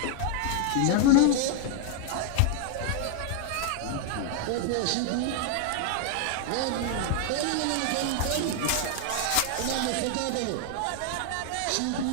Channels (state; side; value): different; both; correlation 0.00